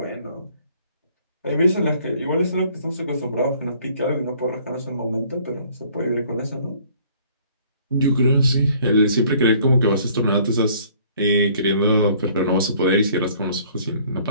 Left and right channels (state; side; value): inverted; both; correlation -0.58